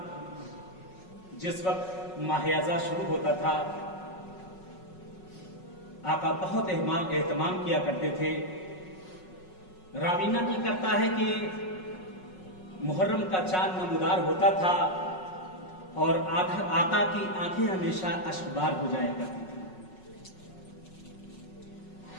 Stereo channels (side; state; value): right; late; 5.4 ms